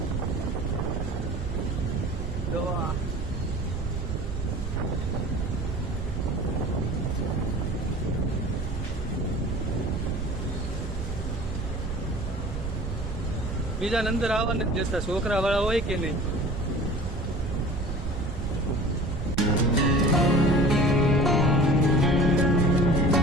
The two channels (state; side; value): noise; right; rumble, 5 dB below the sound